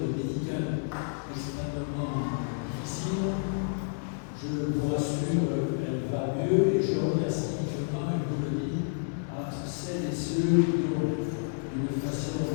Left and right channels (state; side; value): silent; right; digital silence